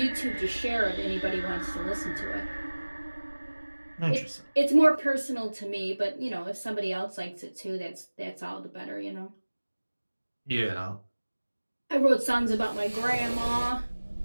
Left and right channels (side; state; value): both; inverted; correlation -1.00